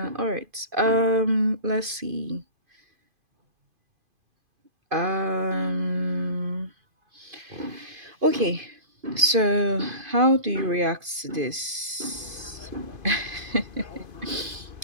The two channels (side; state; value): left; late; 2.5 ms